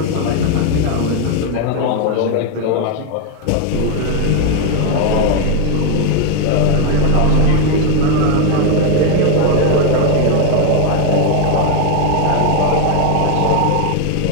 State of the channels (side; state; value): both; different; correlation 0.01